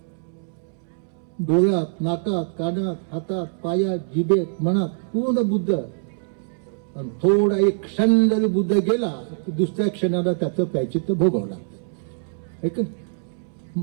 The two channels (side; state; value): left; silent; 63 dB below the other